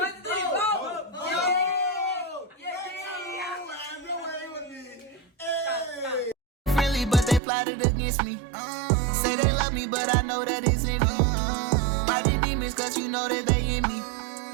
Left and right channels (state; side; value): drops out; left; at 7.4 s